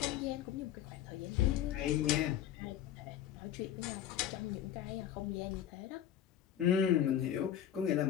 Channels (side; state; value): right; quieter; 10.6 dB